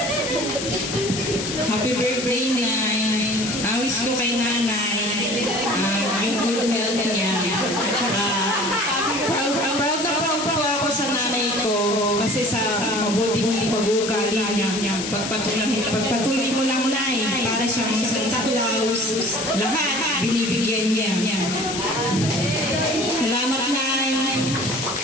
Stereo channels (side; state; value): left; noise; hiss, 5 dB below the sound